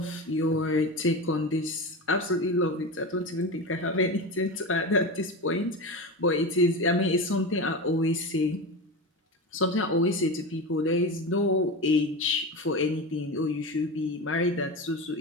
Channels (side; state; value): both; normal; correlation 0.23